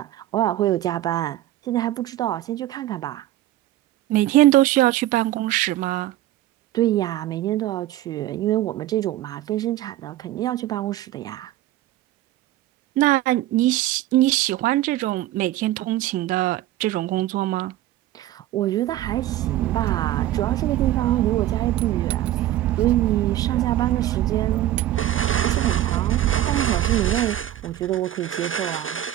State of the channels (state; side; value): quieter; left; 14.1 dB